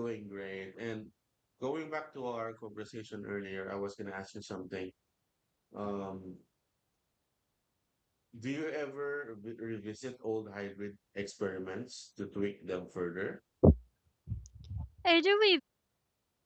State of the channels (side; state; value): both; identical; correlation 1.00